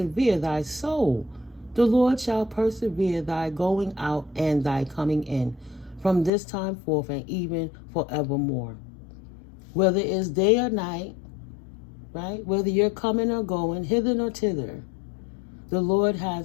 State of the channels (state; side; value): drops out; right; at 6.3 s